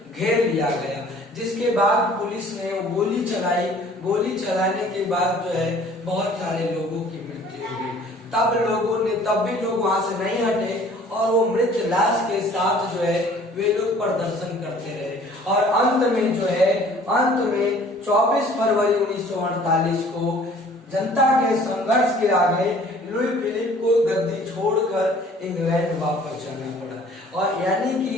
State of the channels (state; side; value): normal; both; correlation 0.52